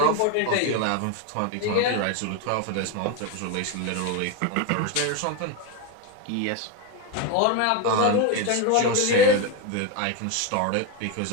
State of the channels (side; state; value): both; different; correlation 0.03